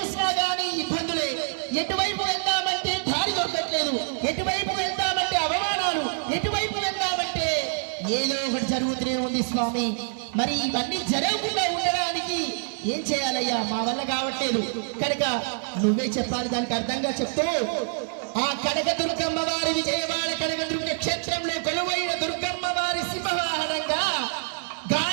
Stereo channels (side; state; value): left; silent; 61 dB below the other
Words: గానీ ఇబ్బందులే. ఎటువైపు వెళ్దామంటే దారి దొరకట్లేదు, ఎటువైపు వెళ్దామంటే అవమానాలు, ఎటువైపు వెళ్దామంటే ఏదో ఒకటి జరుగుతూనే ఉంది స్వామి. మరి ఇవన్నీ జరగకుండా ఉండడానికి ఏం చేయాలయ్యా? మా వల్ల కావట్లేదు కనుక నువ్వే చెప్పాలి. దానికి అర్థంగా చెప్తూ ఆ కనకదుర్గమ్మ వారి విజయవాడ కనకదుర్గ క్షేత్రంలో కొలువైన దుర్గమ్మ వారి సింహవాహనంగా